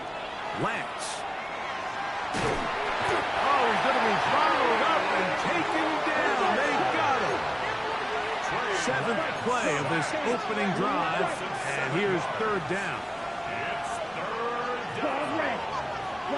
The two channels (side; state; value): both; identical; correlation 1.00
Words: Lance. Oh, he's going to be followed up and taken down. They got him. 7th play of this opening drive, and here's 3rd down. It's 3rd down. Ball red.